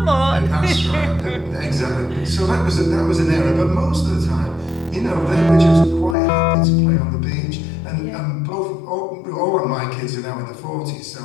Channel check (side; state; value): right; drops out; at 6.2 s